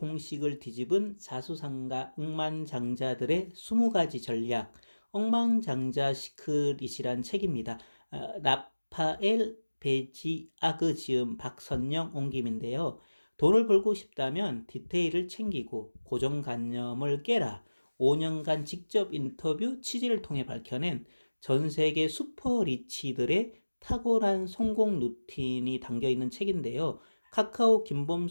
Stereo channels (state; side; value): inverted; both; correlation -1.00